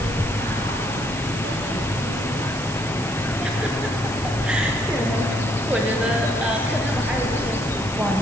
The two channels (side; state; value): right; noise; hiss, 12 dB below the sound